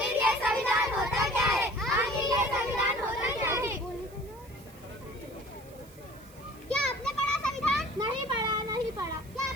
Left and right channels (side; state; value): right; noise; hiss, 24 dB below the sound